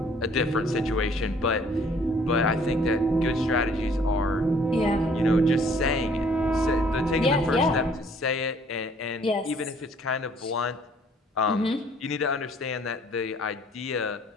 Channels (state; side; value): normal; both; correlation 0.59